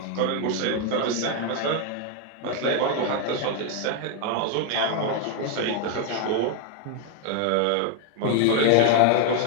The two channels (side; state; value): both; different; correlation 0.01